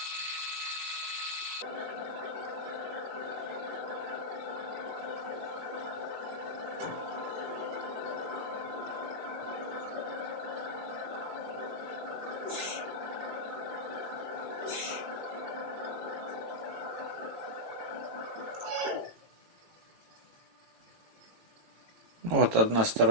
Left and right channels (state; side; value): late; left; 18 ms